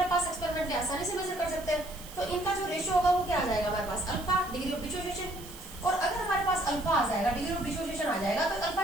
पास एक्सपेरिमेंटली आसानी से मेजर कर सकते हैं, तो इनका जो रेशियो होगा वो क्या आ जाएगा हमारे पास? Alpha, degree of dissociation. और अगर हमारे पास अल्फा आ जाएगा, डिग्री ऑफ डिसोसिएशन आ जाएगा, तो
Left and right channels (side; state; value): right; noise; hiss, 16 dB below the sound